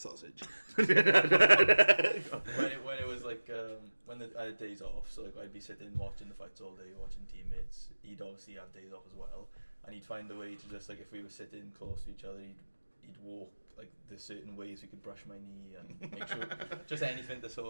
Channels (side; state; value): both; inverted; correlation -1.00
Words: when it was like when I had days off, so like I'd be sitting watching the fights all day, watching teammates. He'd obviously have days off as well, and he'd find a way to just like, if we were sitting close to each other, he'd walk like the certain ways we could brush my knee and make sure just anything to sort